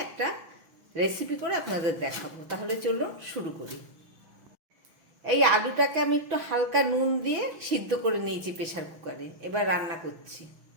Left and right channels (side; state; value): left; late; 6.0 ms